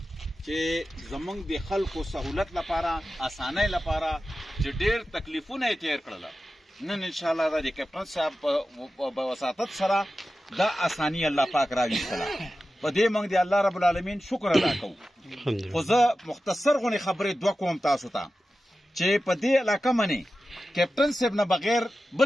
چې زمونږ د خلکو سهولت لپاره اسانۍ لپاره چې ډېر تکلیفونه یې تیر کړل نن انشاءالله د کیپټن صاحب په وساطت سره دا اساني الله پاک راویستله په دې موږ د الله رب العالمین شکر ادا کوو خو زه مختصر غونې خبرې دوه کوم تاسو ته چې په دې علاقه منې کیپټن صاحب نه بغیر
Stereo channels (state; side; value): normal; both; correlation 0.93